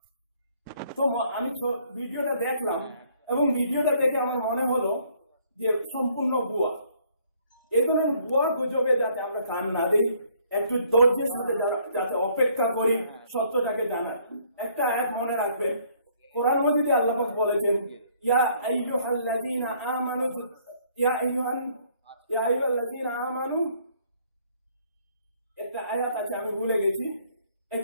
তো আমি ভিডিওটা দেখলাম, এবং ভিডিওটা দেখে আমার মনে হলো যে সম্পূর্ণ ভুয়া। এই ধরনের ভুয়া গুজবে যাতে আমরা কান না দিই, একটু ধৈর্যের সাথে যাতে অপেক্ষা করি সত্যটাকে জানার। একটা আয়াত মনে রাখবেন, কোরআন মাজিদে আল্লাহ পাক বলেছেন, ইয়া আইয়ুহাল্লাযীনা আমানু, একটা আয়াত আছে আমি ভুলে গেছি,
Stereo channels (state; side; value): inverted; both; correlation -0.63